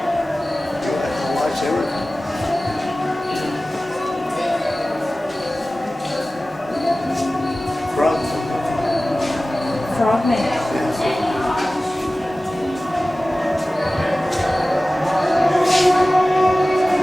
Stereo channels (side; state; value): both; normal; correlation 0.97